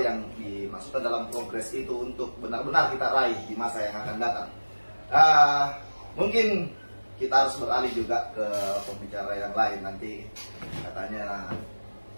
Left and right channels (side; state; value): both; inverted; correlation -1.00